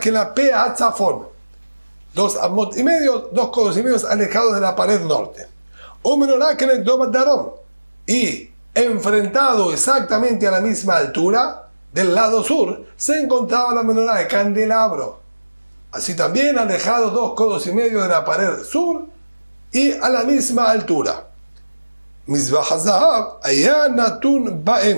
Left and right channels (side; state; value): both; inverted; correlation -1.00